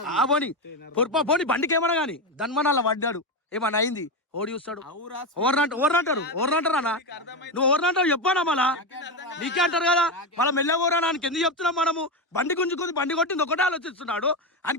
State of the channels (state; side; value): normal; both; correlation 0.13